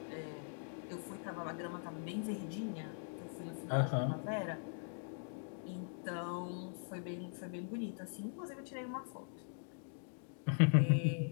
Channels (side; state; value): right; silent; digital silence